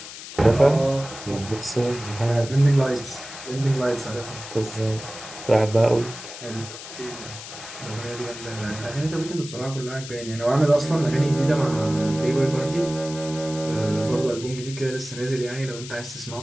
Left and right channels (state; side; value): noise; left; hiss, 12 dB below the sound